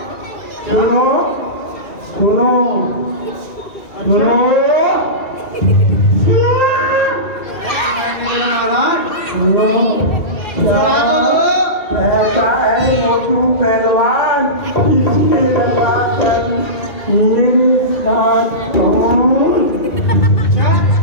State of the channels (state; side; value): late; right; 2.3 ms